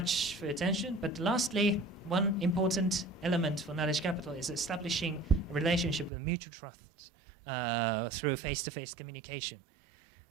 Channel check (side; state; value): left; drops out; at 6.1 s